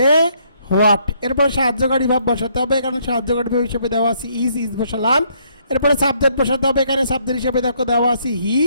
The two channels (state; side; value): inverted; both; correlation -0.69